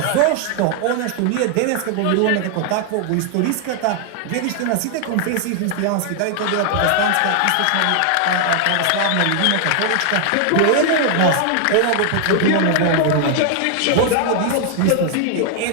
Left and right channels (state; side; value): different; both; correlation 0.00